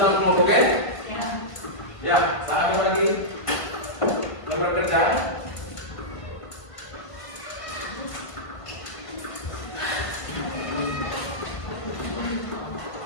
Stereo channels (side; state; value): right; late; 1.5 ms